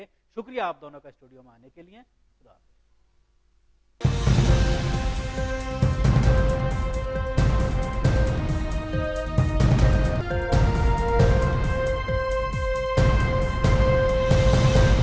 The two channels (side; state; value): both; identical; correlation 1.00